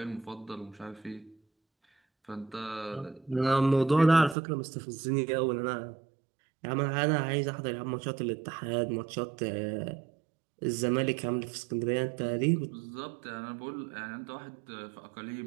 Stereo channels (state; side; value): drops out; left; at 4.4 s